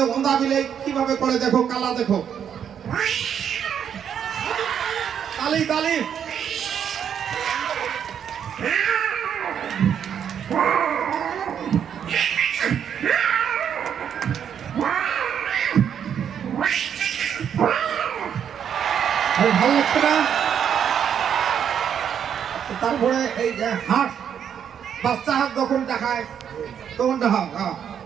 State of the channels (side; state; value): left; quieter; 8.5 dB